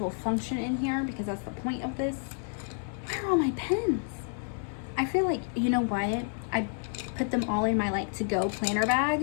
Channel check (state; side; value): silent; right; 58 dB below the other